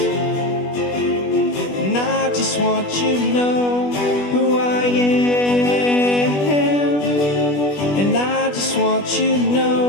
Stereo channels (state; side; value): late; right; 20 ms